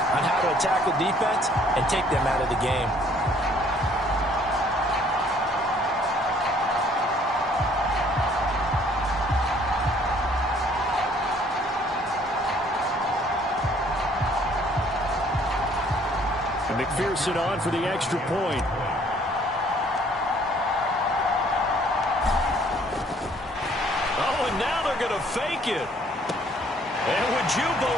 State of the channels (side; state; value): both; normal; correlation 0.60